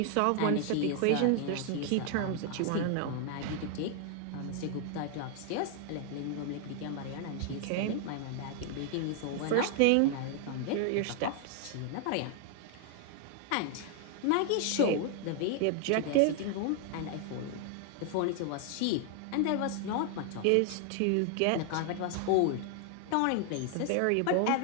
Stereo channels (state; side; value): different; both; correlation 0.00